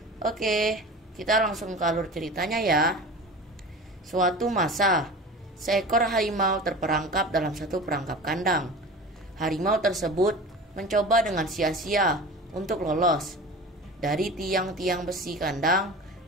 Oke, kita langsung ke alur ceritanya ya. Suatu masa, seekor harimau terperangkap dalam satu perangkap kandang. Harimau tersebut mencoba dengan sia-sia untuk lolos dari tiang-tiang besi kandang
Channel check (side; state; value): both; normal; correlation 0.35